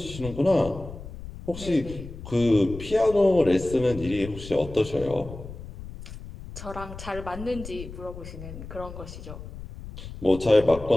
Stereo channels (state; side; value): noise; left; rumble, 12 dB below the sound